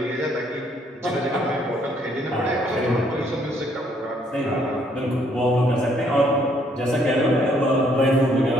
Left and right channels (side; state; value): both; normal; correlation 0.67